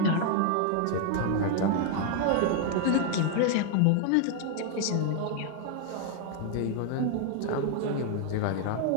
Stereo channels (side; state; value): both; different; correlation 0.00